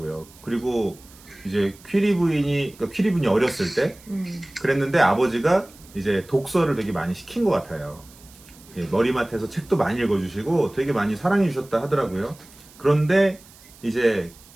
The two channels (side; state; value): right; noise; hiss, 24 dB below the sound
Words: 그리고 이제 퀴리 부인이 어렸을 때 그랬는데 아버지가 이제 독서를 되게 많이 시킨 것 같아요. 예, 머리맡에서 책도 많이 읽어주시고 되게 많이 사랑해 주셨다 하더라고요. 그런데 이제